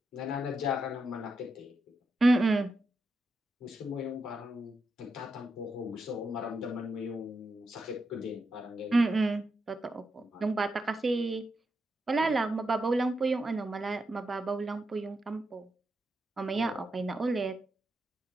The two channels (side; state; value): both; normal; correlation 0.85